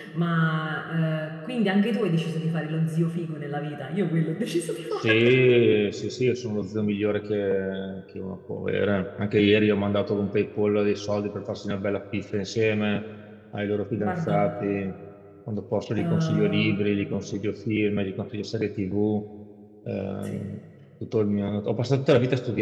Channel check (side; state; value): both; identical; correlation 1.00